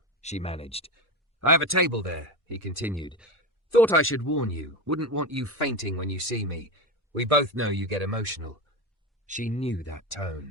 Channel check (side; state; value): both; normal; correlation 0.19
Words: she managed. "I have a table there," he continued. "Thought I should warn you. Wouldn't want you fainting when you see me. We both know you get emotional." She knew that